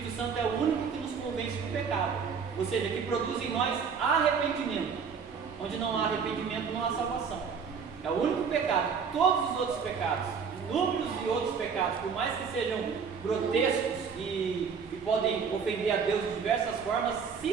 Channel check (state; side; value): quieter; left; 6.2 dB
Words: Santo é o único que nos convence do pecado, ou seja, que produz em nós arrependimento. Onde não há arrependimento, não há salvação. É o único pecado. Todos os outros pecados, inúmeros de outros pecados, por mais que sejam grotescos e podem ofender a Deus de diversas formas,